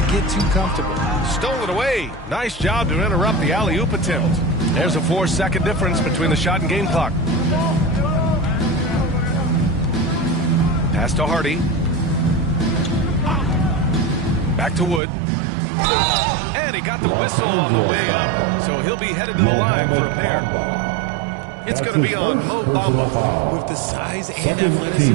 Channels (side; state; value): left; drops out; at 15.0 s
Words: get too comfortable. Stole it away. Nice job to interrupt the alley-oop attempt. There's a 4-second difference between the shot and game clock. Pass to Hardy. Back to Wood. And he got the whistle on the way up. So he'll be headed to the line for a pair. It's going to be on Mo Bamba. With the size and